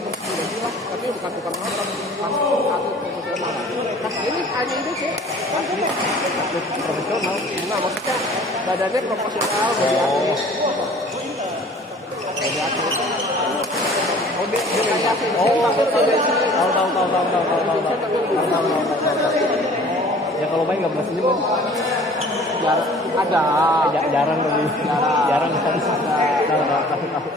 tapi bukan tukang nonton, atlet profesional. Ini hanya ini sih, atlet profesional. Nah maksudnya badannya profesional dari atlet. Dari atlet. Oh dia kayak sih. Tahu. Ya kalau main nggak pernah senyum kan? Jarang lebih. Jarang kan? Tahu.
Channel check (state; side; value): normal; both; correlation 0.49